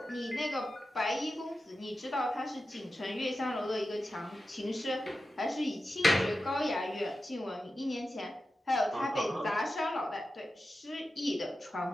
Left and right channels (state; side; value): normal; both; correlation 0.92